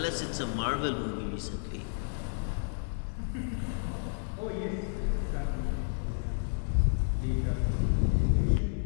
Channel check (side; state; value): right; silent; digital silence